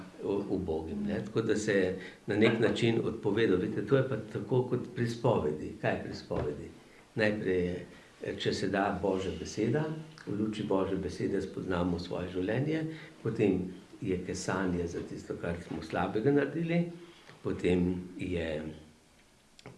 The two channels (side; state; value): both; identical; correlation 1.00